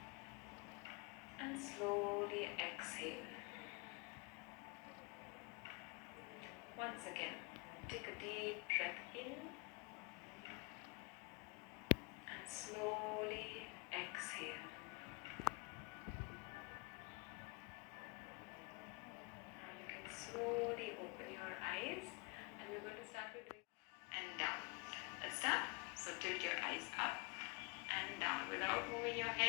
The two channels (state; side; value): quieter; right; 28.8 dB